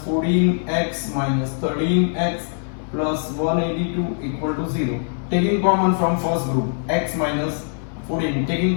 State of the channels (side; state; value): right; silent; 62 dB below the other